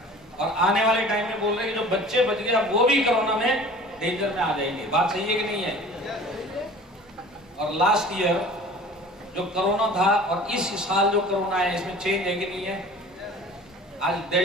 और आने वाले टाइम में बोल रहे हैं कि जो बच्चे बच गए वो भी कोरोना में डेंजर में आ जाएंगे। बात सही है कि नहीं है? और लास्ट ईयर जो कोरोना था और इस साल जो कोरोना है इसमें चेंज है कि नहीं है? आज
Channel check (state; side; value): normal; both; correlation 0.44